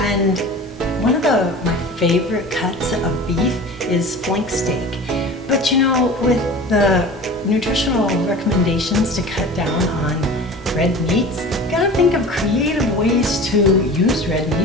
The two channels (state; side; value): normal; both; correlation 0.38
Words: And one of my favorite cuts of beef is flank steak. But you know, with the nutritional recommendations to cut down on red meats, you gotta think of creative ways to use red